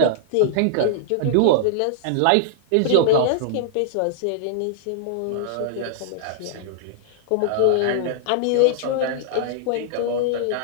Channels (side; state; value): both; different; correlation -0.01